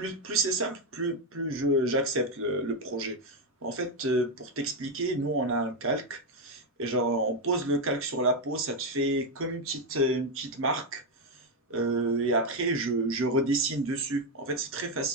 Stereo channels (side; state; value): both; normal; correlation 0.05